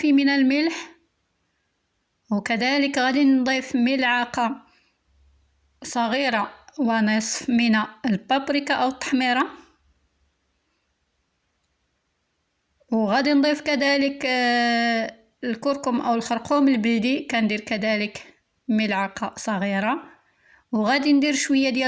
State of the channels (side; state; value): both; identical; correlation 1.00